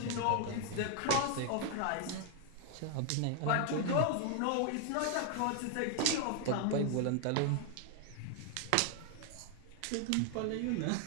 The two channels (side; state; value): both; different; correlation 0.00